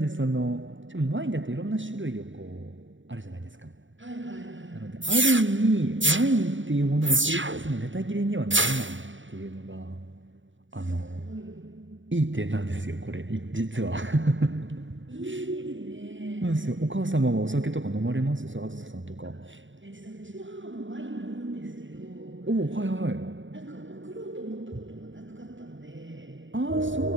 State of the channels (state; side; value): late; left; 0.55 ms